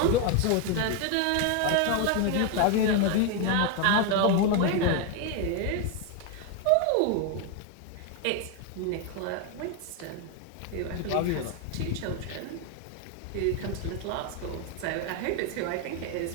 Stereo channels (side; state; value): both; different; correlation 0.01